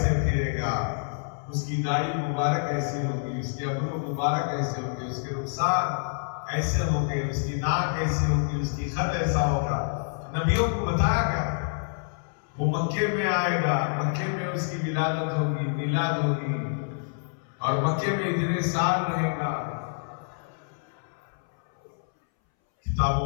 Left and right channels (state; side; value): silent; right; 60 dB below the other